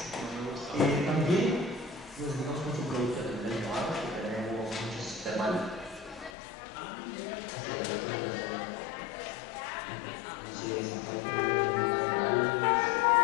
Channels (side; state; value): right; drops out; at 6.3 s